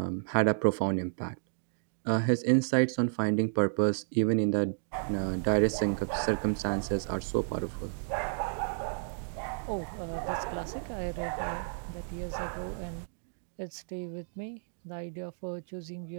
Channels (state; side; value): silent; left; digital silence